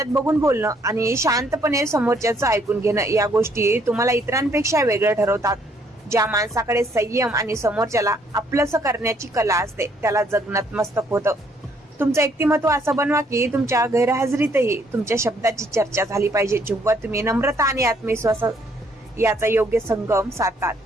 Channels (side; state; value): both; normal; correlation 0.67